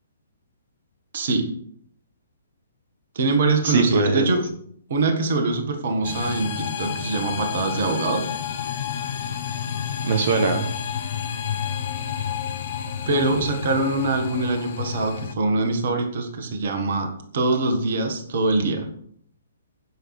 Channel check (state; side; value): inverted; both; correlation -0.53